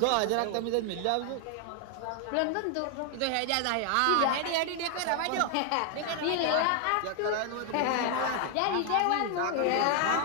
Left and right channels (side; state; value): both; different; correlation 0.00